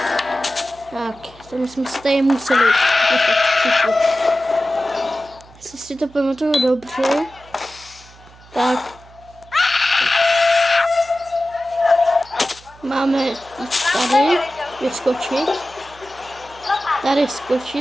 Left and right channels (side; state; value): right; noise; hum, 24 dB below the sound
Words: Tak, tam jsme se tady museli. Jestli si to pamatuju dobře, tak máme jít tady, vyskočit, tady